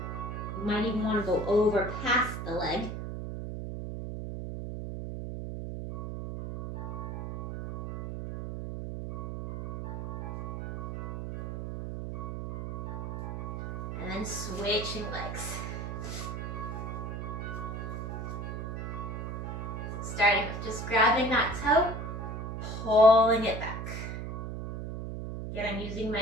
You might even want to go over past the leg. And then switching legs. Starting with just grabbing that toe, pulling it back. Again, I'm using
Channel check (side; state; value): right; noise; hum, 5 dB below the sound